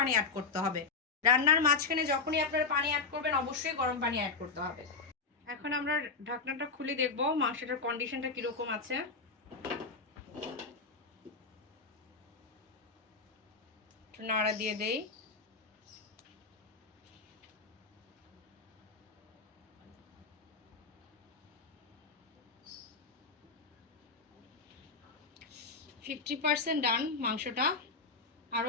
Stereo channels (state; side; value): quieter; right; 4.4 dB